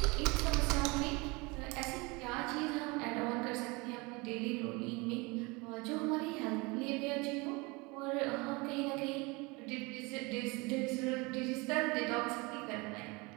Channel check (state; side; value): quieter; left; 26.3 dB